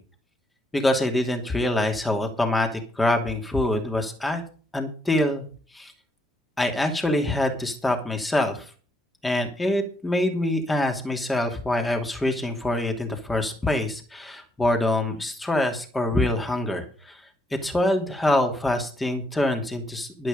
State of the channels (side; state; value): both; normal; correlation 0.74